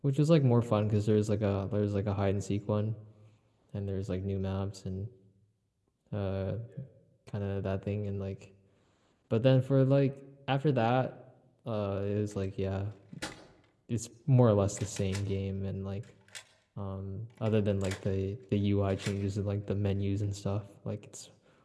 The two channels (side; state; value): both; identical; correlation 1.00